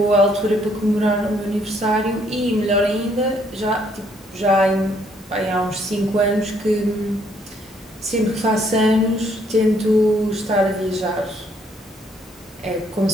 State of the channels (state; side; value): normal; both; correlation 0.67